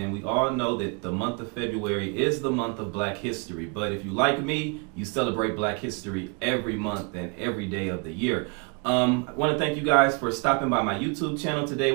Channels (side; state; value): left; quieter; 32.9 dB